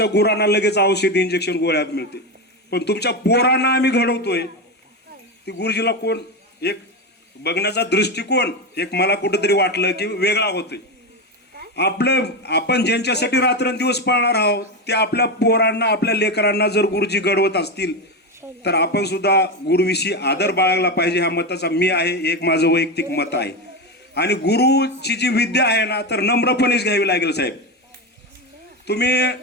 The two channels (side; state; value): both; normal; correlation 0.15